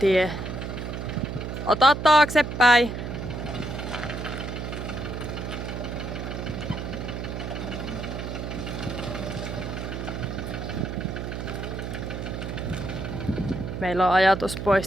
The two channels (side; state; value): right; noise; hum, 5 dB below the sound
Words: Ota taaksepäin! Meillä on ajatus